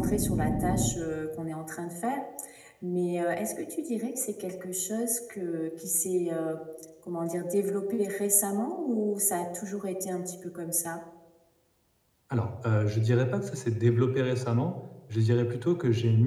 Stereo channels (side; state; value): both; identical; correlation 1.00